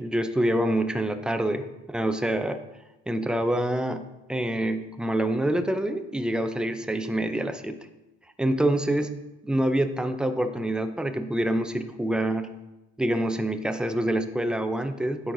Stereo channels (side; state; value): both; normal; correlation 0.87